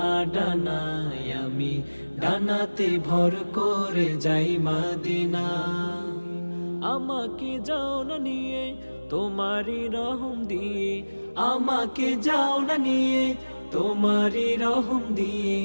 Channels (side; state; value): both; inverted; correlation -1.00